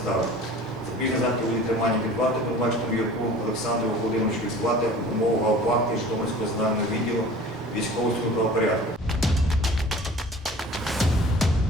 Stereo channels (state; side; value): normal; both; correlation 0.44